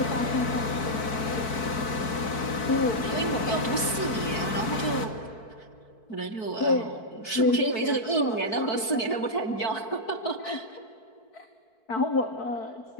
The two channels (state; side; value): late; right; 4.6 ms